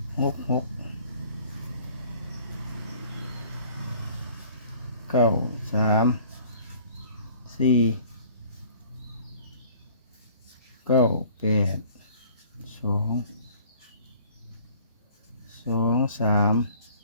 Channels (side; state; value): both; inverted; correlation -0.53